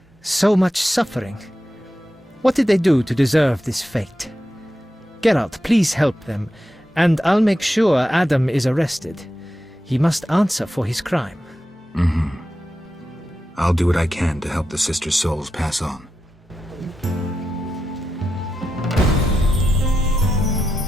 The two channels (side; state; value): both; normal; correlation 0.89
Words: So much suffering. What did they do to deserve this fate? Geralt, please help them, and I'll make sure Adam is arrested. He must answer for his crime. I'll do what I can to help the sisters' souls pass on.